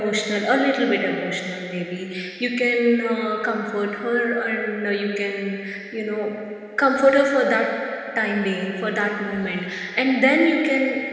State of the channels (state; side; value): identical; both; correlation 1.00